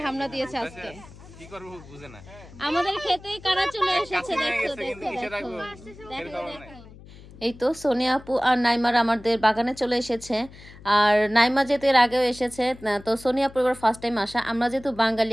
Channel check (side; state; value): left; noise; hum, 19 dB below the sound